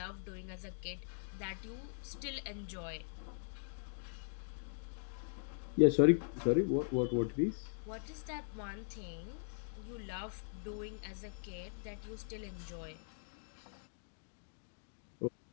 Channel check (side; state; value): right; silent; digital silence